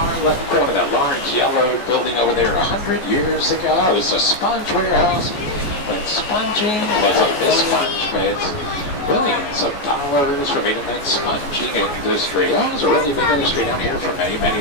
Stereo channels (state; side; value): late; right; 14 ms